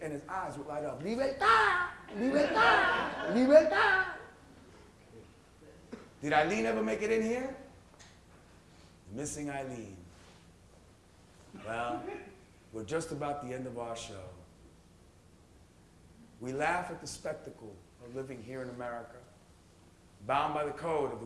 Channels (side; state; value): both; identical; correlation 1.00